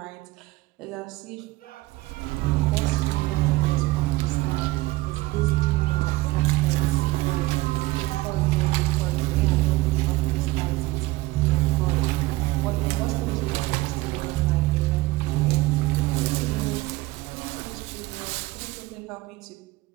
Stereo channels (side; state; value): left; quieter; 19.5 dB